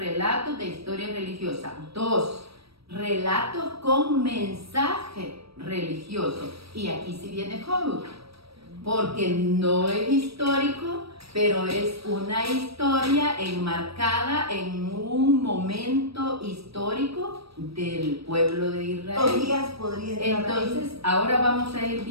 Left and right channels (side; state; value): left; late; 0.77 ms